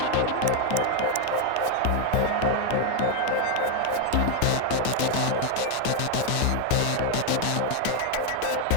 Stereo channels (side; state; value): both; different; correlation 0.01